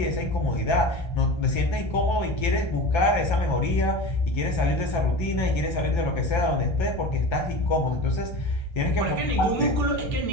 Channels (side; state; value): right; late; 1.3 ms